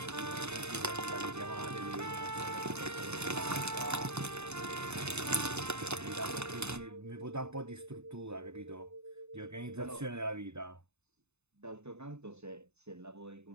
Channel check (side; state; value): left; late; 0.81 ms